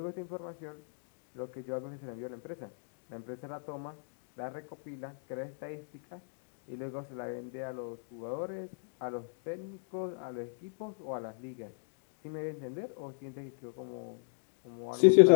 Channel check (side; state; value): right; silent; digital silence